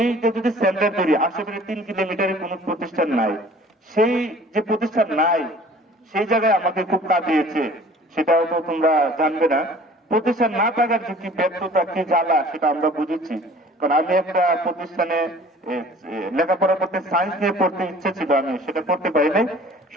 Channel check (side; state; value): both; normal; correlation 0.49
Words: যে যদি সেন্টার তৈরি, আশেপাশে 3 কিলোমিটারে কোনো প্রতিষ্ঠান নাই। সেই যে প্রতিষ্ঠান নাই, সেই জায়গায় আমাকে খুব কাঁদিয়েছে। সেটাও তো তোমরা জানবে না। প্রতিষ্ঠান না থাকার যে কি ব্যর্থতা, কি জ্বালা, সেটা আমরা বুঝেছি। কারণ আমি একটা প্রতিষ্ঠানে লেখাপড়া করতে, সায়েন্স নিয়ে পড়তে ইচ্ছে ছিল, আমি সেটা পড়তে পারি নাই